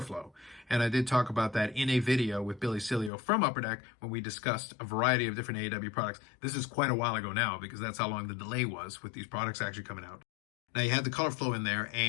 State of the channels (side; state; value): right; drops out; at 3.1 s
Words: flow. And I did talk about that in a video with Billy Cilio from Upper Deck when we discussed a variety of different AEW products. This is quite a while ago now because that's how long the delay was with these products actually coming out. Now you had the color flow in there,